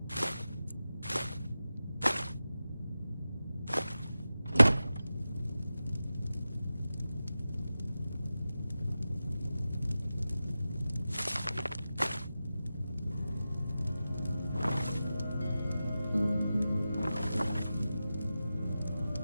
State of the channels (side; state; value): both; inverted; correlation -0.93